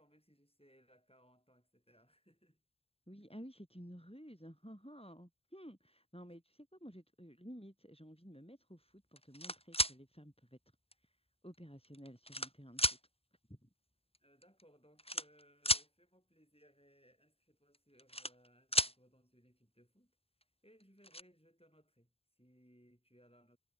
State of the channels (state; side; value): late; right; 0.28 ms